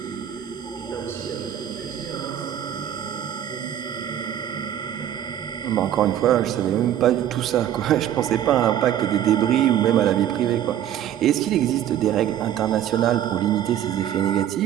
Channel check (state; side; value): quieter; left; 10.9 dB